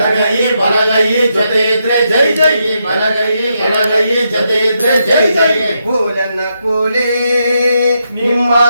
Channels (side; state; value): both; inverted; correlation -0.82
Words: ಬಲಗೈ ಜೊತೆ ಇದ್ರೆ ಜೈ ಜೈ, ಬಲಗೈ ಎಡಗೈ ಜೊತೆ ಇದ್ರೆ ಜೈ ಜೈ. ಕೋಲನ್ನ ಕೋಲೆ ನಿಮ್ಮ